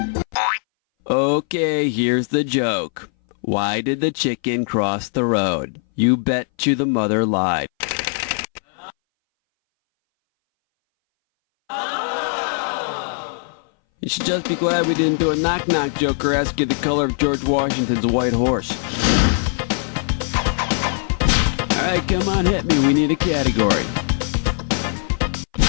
Okay, here's the joke. Why did the chicken cross the road? You bet you the mother lied. You should just be glad we didn't do a knock-knock joke or ask you the color of George Washington's white horse. All right, come on, hit me. We need a category.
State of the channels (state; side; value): silent; right; 61 dB below the other